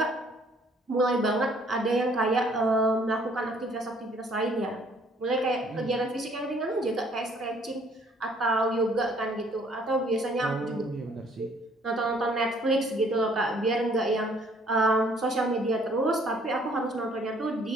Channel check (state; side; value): normal; both; correlation 0.61